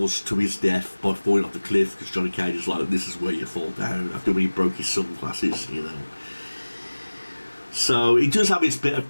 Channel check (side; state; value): both; inverted; correlation -1.00